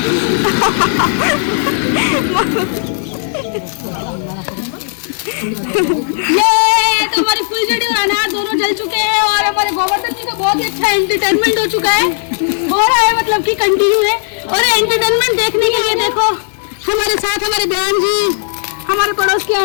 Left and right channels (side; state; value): right; silent; 64 dB below the other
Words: ये तो हमारी फुलझड़ी और अनार दोनों जल चुके हैं और हमारे गोवर्धन जी का बहुत ही अच्छा एंटरटेनमेंट हो चुका है। हो रहा है मतलब कि कंटिन्यू है। और एंटरटेनमेंट देखने के लिए देखो हमारे साथ हमारे बहन जी, हमारे पड़ोस की